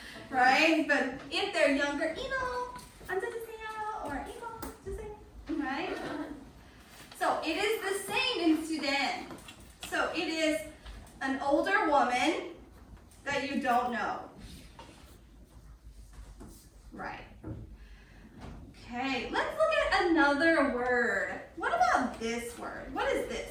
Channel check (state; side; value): identical; both; correlation 1.00